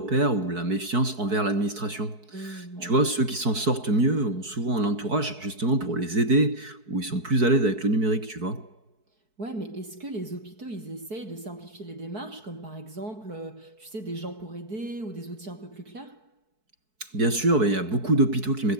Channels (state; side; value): late; left; 4.6 ms